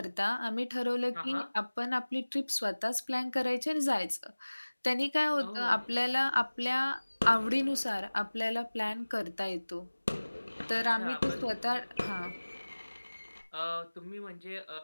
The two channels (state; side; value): inverted; both; correlation -1.00